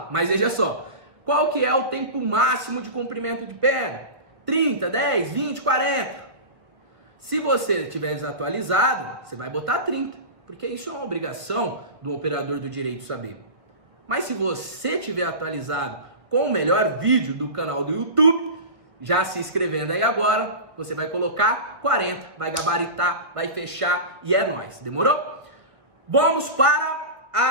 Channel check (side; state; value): left; late; 1.7 ms